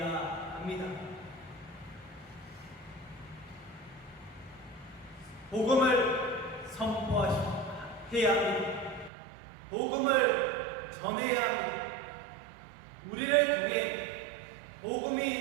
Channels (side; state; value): left; drops out; at 9.1 s